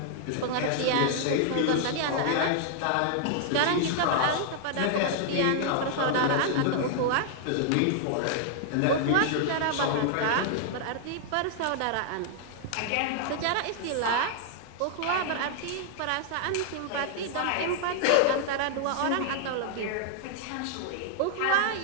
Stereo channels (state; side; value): different; both; correlation -0.01